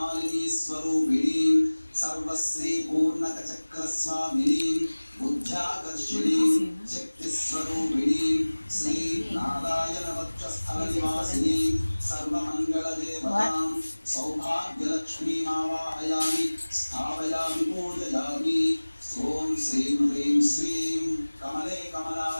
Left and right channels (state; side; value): inverted; both; correlation -1.00